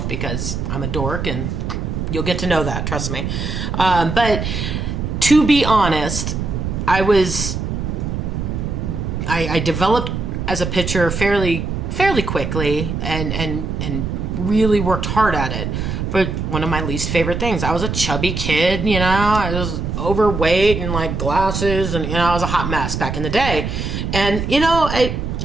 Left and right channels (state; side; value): noise; right; rumble, 3 dB below the sound